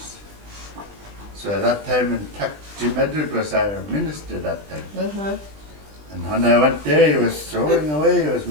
So at that time in Jim Edward was our minister that time. Uh-huh. And when I went there, he was throwing away, he was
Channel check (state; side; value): late; left; 20 ms